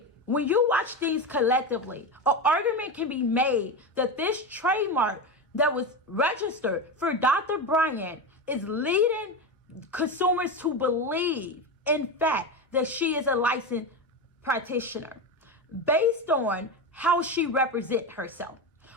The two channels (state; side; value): normal; both; correlation 0.18